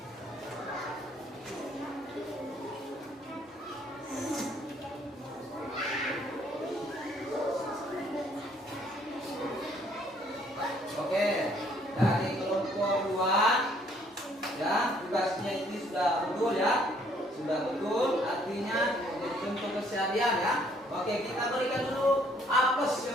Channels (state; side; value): normal; both; correlation 0.64